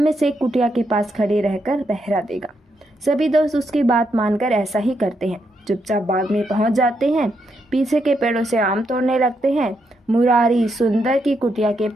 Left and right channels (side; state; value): both; normal; correlation 0.80